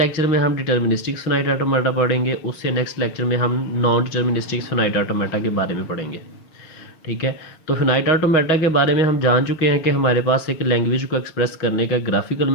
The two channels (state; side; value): late; right; 6.4 ms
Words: में हम डिटर्मिनिस्टिक्स फिनाइट ऑटोमेटा पढ़ेंगे, उससे नेक्स्ट लेक्चर में हम नॉन डिटर्मिनिस्टिक्स फिनाइट ऑटोमेटा के बारे में पढ़ेंगे। ठीक है, तो फिनाइट ऑटोमेटा के बारे में हम जान चुके हैं कि हमारे पास एक लैंग्वेज को एक्सप्रेस करने का ग्राफिकल